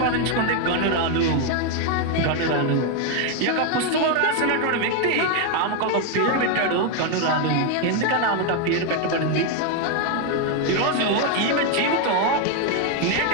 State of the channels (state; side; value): different; both; correlation 0.01